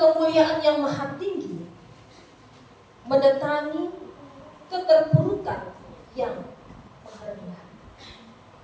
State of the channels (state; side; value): identical; both; correlation 1.00